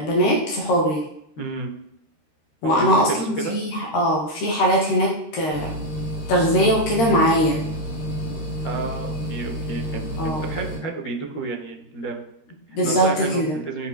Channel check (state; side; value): late; right; 13 ms